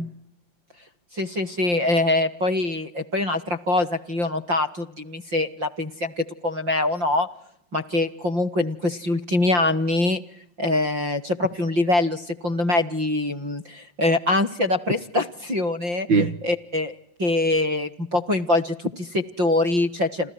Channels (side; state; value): left; late; 5.7 ms